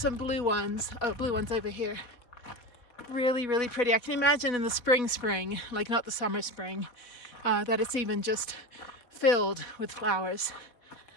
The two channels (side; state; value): right; late; 4.1 ms